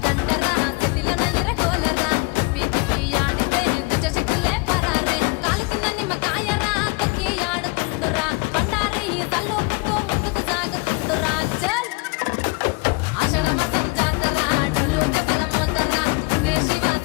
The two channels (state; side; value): quieter; right; 27.7 dB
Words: దండరా చేతిలో ఇరగోలరా తిప్పి తిప్పి ఆడితే దుచ్చ శక్తులే పరారే కాలు కింద నిమ్మకాయరా తొక్కి ఆడుతుండురా బండారి తల్లుకుంటూ ముందుకు సాగుతుండురా చల్ ఆషాఢ మాసం జాతర డొల్లు దెబ్బల మోతరా దుర్గే శివ